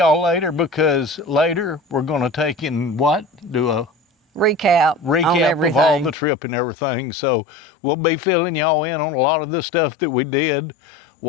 later, because later we're going to take in what? Do a recap of all the trip and everything. So we'll be filling y'all in on a lot of the stuff that we did,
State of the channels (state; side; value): drops out; right; at 6.2 s